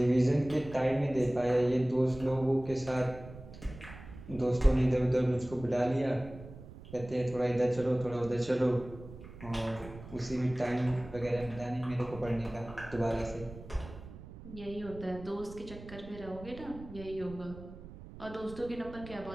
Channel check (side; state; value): right; noise; rumble, 15 dB below the sound